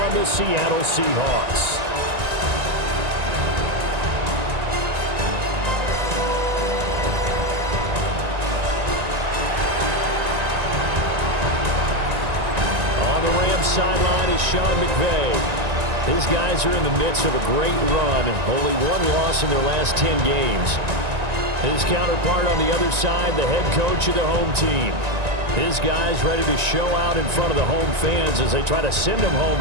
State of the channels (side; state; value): left; late; 1.9 ms